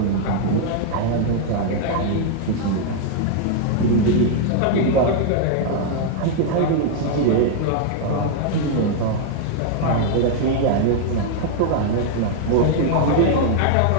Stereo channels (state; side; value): different; both; correlation 0.00